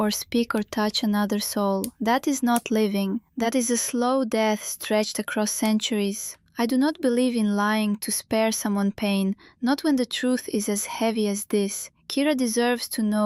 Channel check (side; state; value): both; identical; correlation 1.00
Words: speak or touch another soul. That is not living. That is a slow death stretched across centuries. I do not believe in lying to spare someone pain, not when the truth is as heavy as this. Kira deserves to